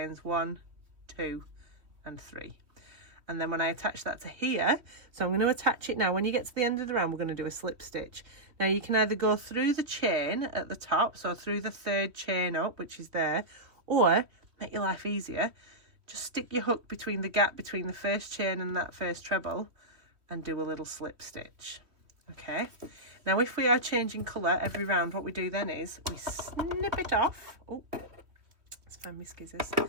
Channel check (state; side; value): late; left; 3.1 ms